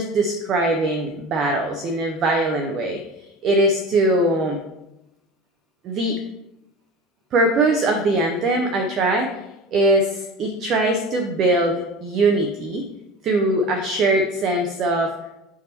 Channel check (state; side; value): normal; both; correlation 0.33